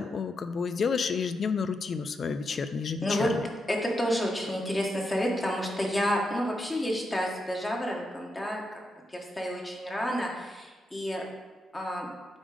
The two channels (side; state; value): both; normal; correlation 0.84